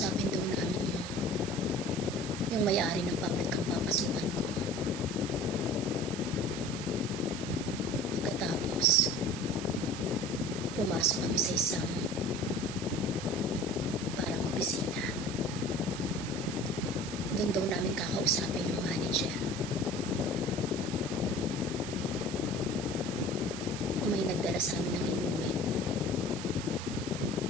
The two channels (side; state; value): right; noise; hiss, 11 dB below the sound